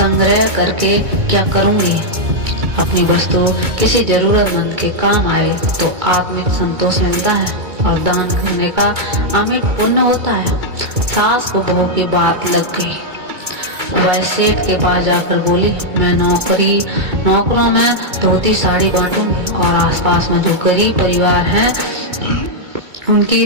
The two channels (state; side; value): late; left; 2.2 ms